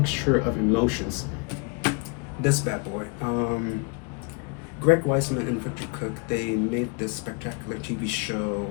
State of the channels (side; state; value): right; quieter; 32.0 dB